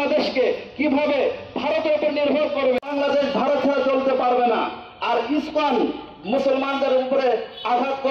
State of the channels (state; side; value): identical; both; correlation 1.00